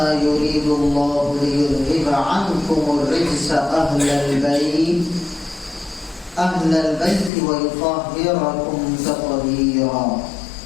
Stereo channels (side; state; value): right; drops out; at 7.3 s